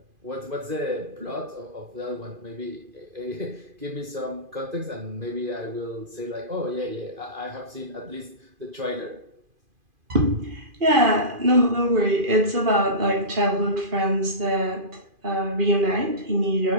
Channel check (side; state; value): left; late; 2.5 ms